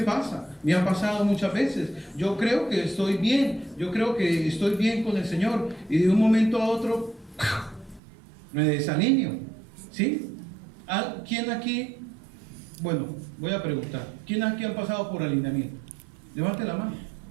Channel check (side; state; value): left; drops out; at 8.0 s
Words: pasado muchas veces. Yo creo que estoy bien, con el Señor, y de un momento a otro me desalineo, ¿sí? ¿Quién aquí? Bueno, voy a preguntar, ¿quién aquí ha pasado por alineamiento? Levante la mano.